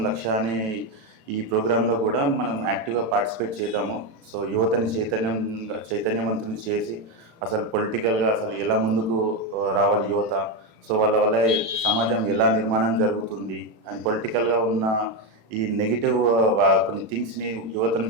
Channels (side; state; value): left; late; 35 ms